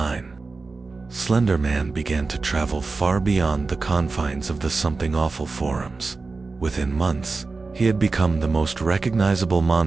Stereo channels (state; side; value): quieter; left; 4.0 dB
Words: Slenderman began to travel far beyond the confines of the Something Awful forums. Within months, he had become the most recognizable